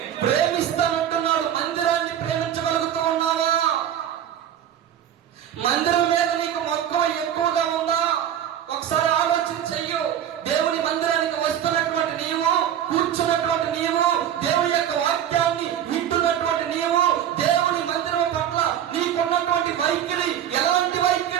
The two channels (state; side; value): quieter; left; 10.2 dB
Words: ప్రేమిస్తానంటున్నాడు. మందిరాన్ని ప్రేమించగలుగుతూ ఉన్నావా? మందిరం మీద నీకు మక్కువ ఎక్కువగా ఉందా? ఒకసారి ఆలోచన చెయ్యు. దేవుని మందిరానికి వస్తున్నటువంటి నీవు, కూర్చున్నటువంటి నీవు, దేవుని యొక్క వాక్యాన్ని వింటున్నటువంటి నీవు, దేవుని మందిరం పట్ల నీకున్నటువంటి వైఖరి ఎలాంటి